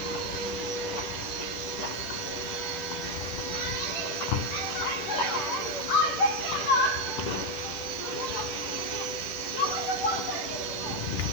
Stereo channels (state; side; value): late; right; 10 ms